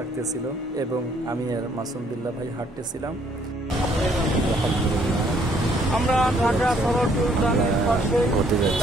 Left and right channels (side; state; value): both; normal; correlation 0.65